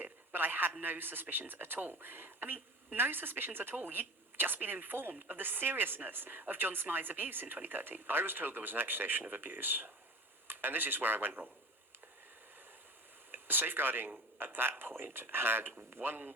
but I had no suspicions at all. I mean, no suspicions at all. You'd just been informed of the seriousness of John Smythe's abuse in 2013. I was told there was an accusation of abuse, and this is where I went wrong. Safeguarding at that point had one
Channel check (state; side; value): normal; both; correlation 0.35